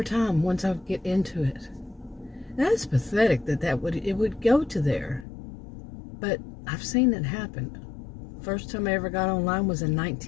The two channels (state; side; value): drops out; right; at 5.2 s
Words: time, once I get into it. That's pathetic that it would go to there. But I've seen it happen. First time I ever got online was in